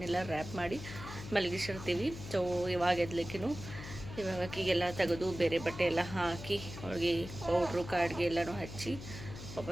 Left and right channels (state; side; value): noise; left; hum, 11 dB below the sound